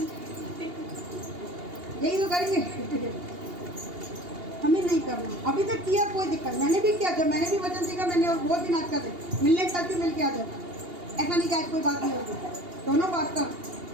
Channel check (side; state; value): left; late; 2.8 ms